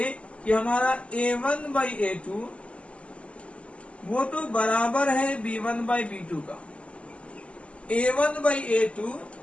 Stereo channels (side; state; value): right; late; 0.058 ms